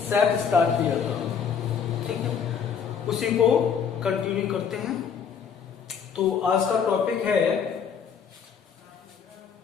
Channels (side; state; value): right; quieter; 7.0 dB